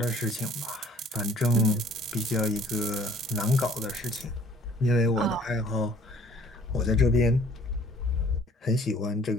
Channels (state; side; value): normal; both; correlation 0.56